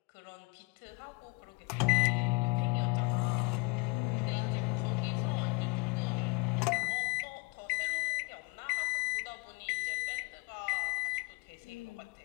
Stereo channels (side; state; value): right; quieter; 30.1 dB